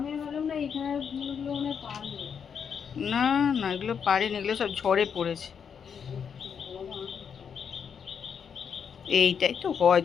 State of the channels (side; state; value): right; quieter; 7.1 dB